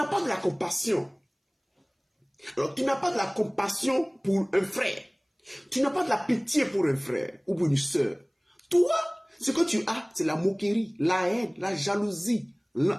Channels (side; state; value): both; identical; correlation 1.00